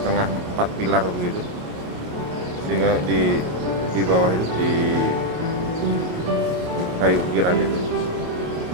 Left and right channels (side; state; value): left; late; 28 ms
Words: 4 pilar begitu, sehingga di bawah itu di kayu ukiran itu,